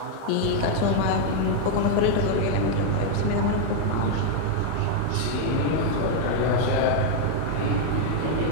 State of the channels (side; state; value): both; different; correlation 0.00